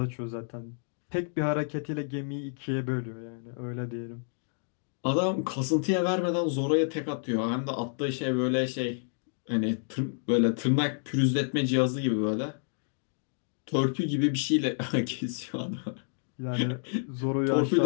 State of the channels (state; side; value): silent; right; digital silence